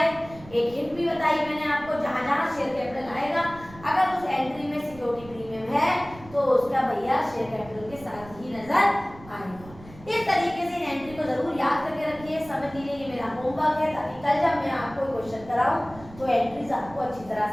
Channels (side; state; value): right; noise; rumble, 19 dB below the sound